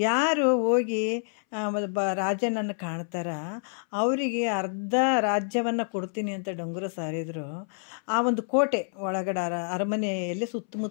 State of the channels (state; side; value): silent; right; 60 dB below the other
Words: ಹೋಗಿ ರಾಜನನ್ನು ಕಾಣ್ತಾರ ಅವರಿಗೆ ಅರ್ಧ ರಾಜ್ಯವನ್ನು ಕೊಡ್ತೀನಿ ಅಂತ ಡಂಗುರ ಸಾರಿದ್ರು. ಆ ಒಂದು ಕೋಟೆ ಒಳಗಡೆ ಅರಮನೆಯಲ್ಲಿ